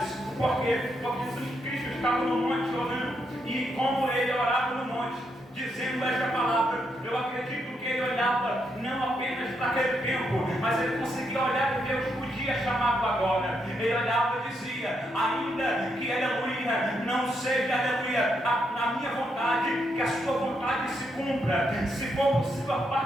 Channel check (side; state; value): both; normal; correlation 0.79